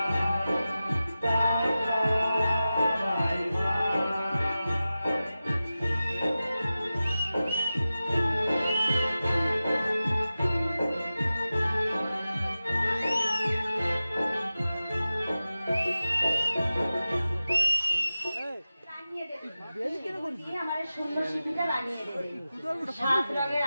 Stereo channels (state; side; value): inverted; both; correlation -0.94